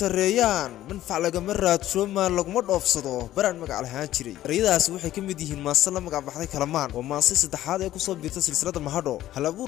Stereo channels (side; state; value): right; quieter; 13.7 dB